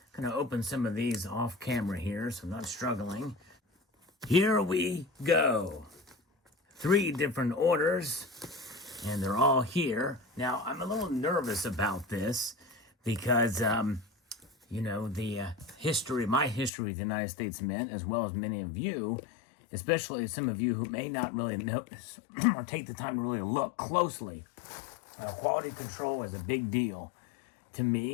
Going to open some of these off camera here, so I'm not struggling. Here we go. 3 different orders, and they're all here. Now, I'm a little nervous about this because, you know, my history with the United States Mint, as well as many of you, especially some of you who may not really notice or take the time to really look closely. Quality control is a big deal to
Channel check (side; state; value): right; drops out; at 16.7 s